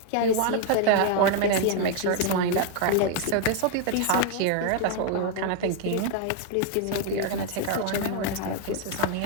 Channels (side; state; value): both; different; correlation 0.01